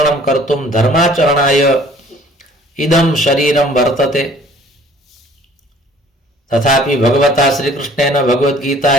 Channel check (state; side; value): normal; both; correlation 0.54